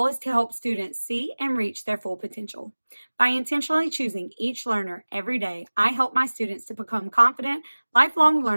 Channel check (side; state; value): both; inverted; correlation -1.00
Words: is to help students see and reach their full potential. By intentionally choosing each learner every day, I help my students to become confident, lifelong